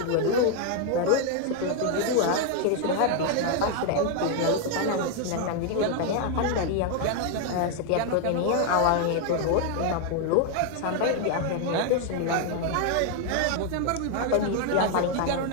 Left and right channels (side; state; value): both; different; correlation 0.01